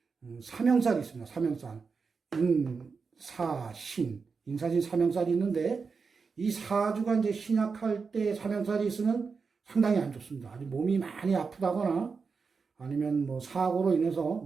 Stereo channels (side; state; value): left; quieter; 5.1 dB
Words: 사명살이 있습니다. 사명살. 인사신. 인사신 사명살이 있는데 이 사주가 이제 신약할 때 사명살이 있으면 상당히 안 좋습니다. 아주 몸이 많이 아프다거나 아니면 뭐 사고로 인해서